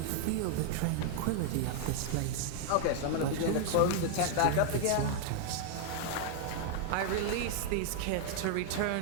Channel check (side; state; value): both; different; correlation 0.00